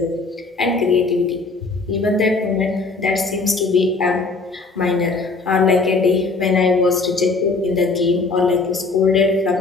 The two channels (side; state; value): right; quieter; 3.8 dB